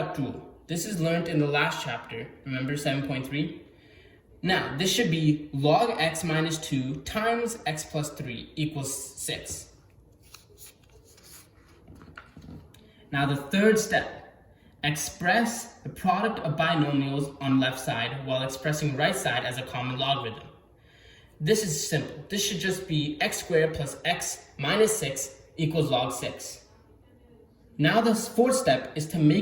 rule. This is learned in the last chapter, remember 7.3? Now, this should be log x minus 2 times x plus 3 equals 6. Now the third step, express the product of binomials on left side while expressing right side as a common logarithm. This is simple. This should just be x squared plus x minus 6 equals log 6. Now the fourth step is to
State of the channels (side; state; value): both; identical; correlation 1.00